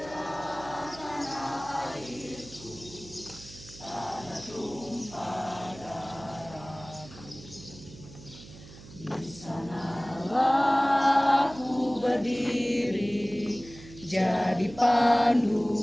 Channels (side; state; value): right; noise; hum, 18 dB below the sound